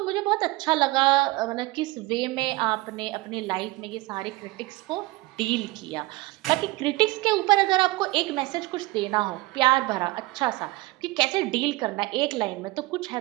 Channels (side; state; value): left; quieter; 20.9 dB